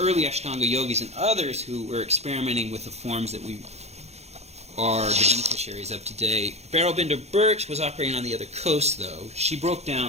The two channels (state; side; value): late; left; 0.31 ms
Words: Ashtanga yogis and others who were experimenting with the forms that we are the beneficiaries of today. Beryl Binder Birch was operating on the other coast, though. She broke